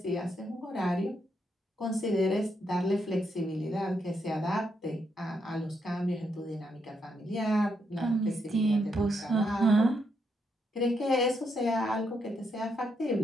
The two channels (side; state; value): both; normal; correlation 0.79